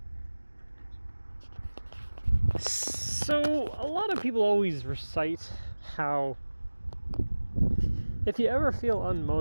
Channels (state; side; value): inverted; both; correlation -1.00